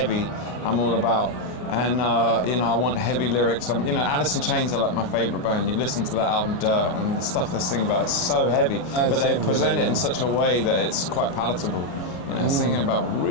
I'm all about. And you know, I want heavy lyrics. You know, Alice in Chains are like my favourite band. You listen to that album, Dirt, and the stuff they sing about is so heavy, but they present it in such a way that it's quite palatable. You know, singing about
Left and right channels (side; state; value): right; late; 33 ms